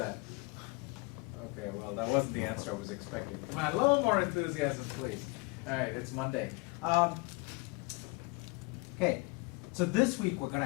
Okay, well that wasn't the answer I was expecting. Come on, a little more enthusiasm, please. All right, it's Monday. Okay, so this week we're gonna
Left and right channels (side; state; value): right; quieter; 27.3 dB